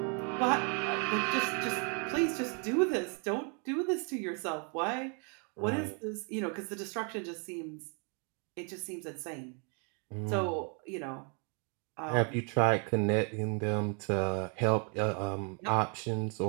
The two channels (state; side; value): quieter; left; 38.0 dB